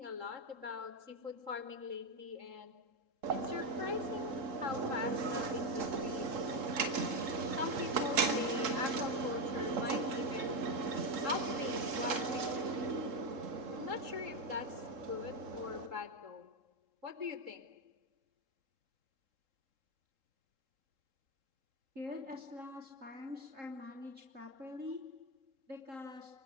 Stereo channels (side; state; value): left; late; 3.7 ms